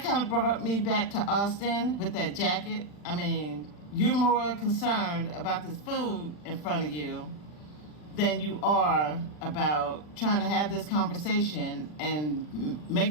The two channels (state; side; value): late; right; 40 ms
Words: kind of brought me back to Austin with that jacket. I mean, you're more concerned about this food in front of you than you are about trying to have this conversation and